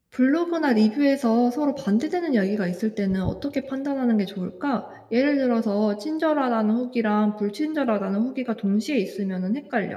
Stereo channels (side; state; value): both; identical; correlation 1.00